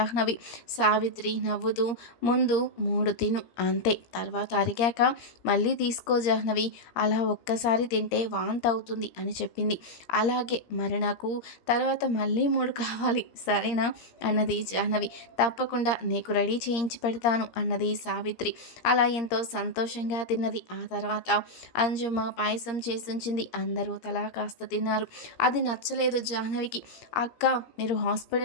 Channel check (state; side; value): late; right; 17 ms